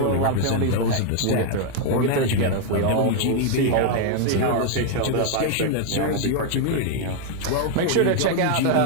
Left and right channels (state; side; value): different; both; correlation 0.01